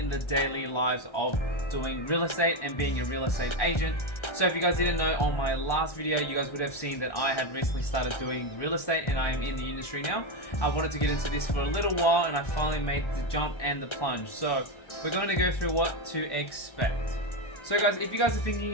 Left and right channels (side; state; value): right; late; 1.3 ms